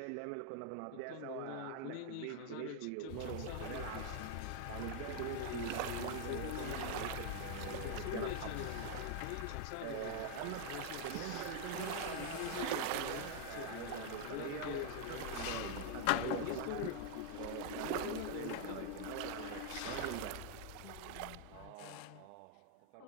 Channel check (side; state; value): both; different; correlation 0.00